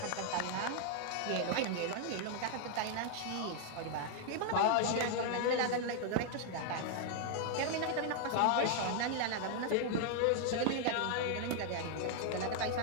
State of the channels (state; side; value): different; both; correlation 0.00